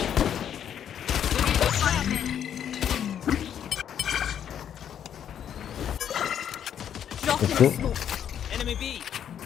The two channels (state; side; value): quieter; right; 9.3 dB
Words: Drop Let's in go. the smoke. Enemy B.